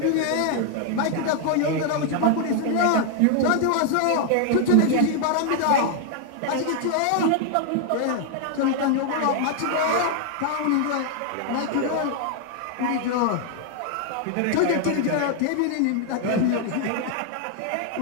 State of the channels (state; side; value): different; both; correlation 0.00